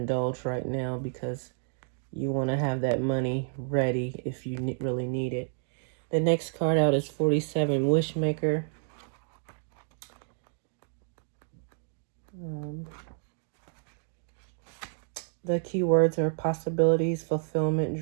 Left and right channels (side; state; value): left; silent; digital silence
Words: right now because you want to have that money ready if you really need it. The next card out is 47, Wishmaker. The keywords are possibilities, fulfillment,